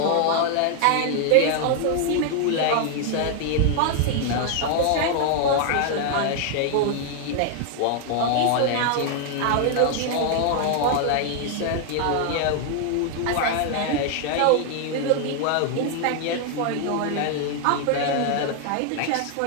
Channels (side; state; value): both; different; correlation 0.00